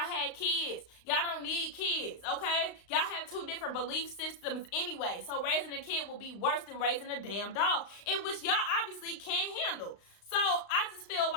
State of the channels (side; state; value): right; late; 35 ms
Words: had kids. Y'all don't need kids, okay? Y'all have two different belief systems anyway. So raising a kid will be worse than raising a damn dog, in which y'all obviously can't handle. So I just feel